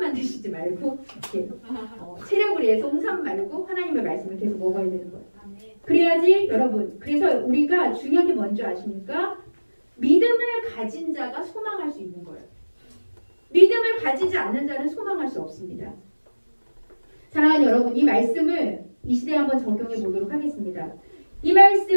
드시지 말고, 이렇게 체력을 위해서 홍삼 말고 하나님의 말씀을 계속 먹어야 되는 거예요. 그래야지 여러분, 그래서 우리가 중요한 게 뭔지 아십니까? 믿음을 가진 자가 소망할 수 있는 거예요. 믿음을 가지지 않는 자는 소망할 수 없습니다. 사랑하는 여러분, 이 말씀을 이 시대에 한번 적용해 보도록 하겠습니다. 이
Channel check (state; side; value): inverted; both; correlation -1.00